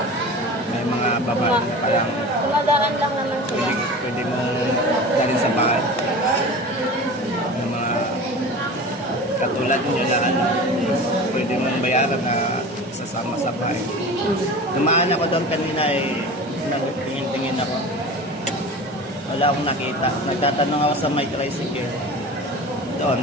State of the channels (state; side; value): normal; both; correlation 0.35